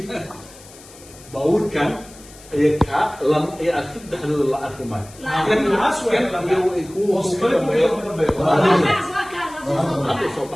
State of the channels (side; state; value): left; noise; hiss, 21 dB below the sound